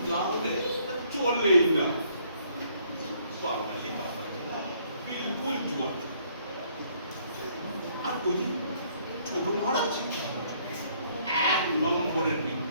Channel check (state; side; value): inverted; both; correlation -0.65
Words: ना होने चोल ले ना। बाबाजी बिल्कुल जुआ। আর ওই ছোট মহারাজ 1 নম্বরের